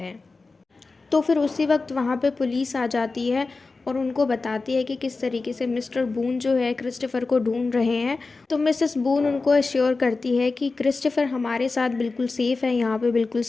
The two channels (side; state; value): right; quieter; 3.8 dB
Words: तो फिर उसी वक्त वहाँ पे पुलिस आ जाती है और उनको बताती है कि किस तरीके से मिस्टर बून जो है क्रिस्टोफर को ढूंढ रहे हैं। तो मिसेस बून उनको अश्योर करती है कि क्रिस्टोफर हमारे साथ बिल्कुल सेफ़ है, यहाँ पे बिल्कुल